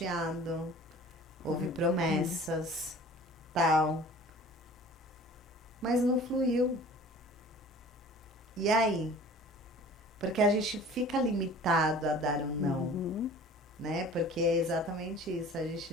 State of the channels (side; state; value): both; normal; correlation 0.45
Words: houve promessas, tal. Mas não fluiu. E aí? Porque a gente fica limitado a dar um não, né? Porque é exatamente isso, a gente